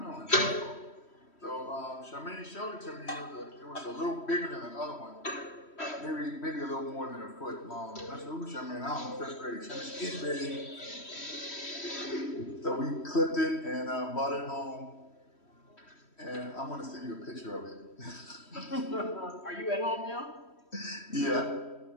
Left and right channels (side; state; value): right; late; 3.1 ms